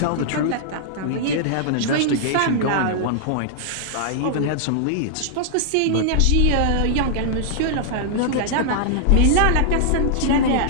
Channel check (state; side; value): different; both; correlation -0.01